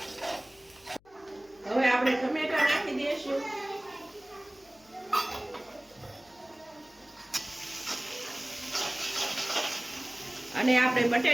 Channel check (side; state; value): left; noise; hum, 30 dB below the sound